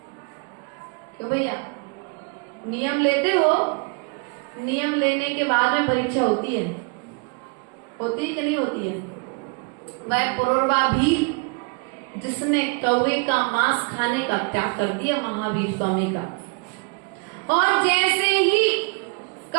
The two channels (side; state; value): left; quieter; 33.0 dB